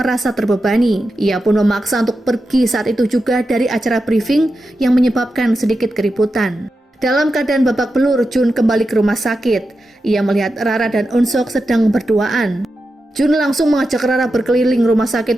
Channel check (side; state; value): both; normal; correlation 0.90